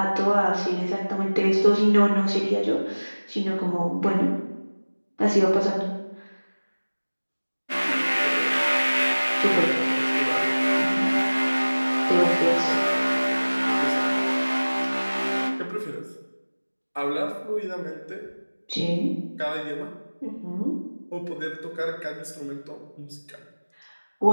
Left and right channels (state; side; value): inverted; both; correlation -1.00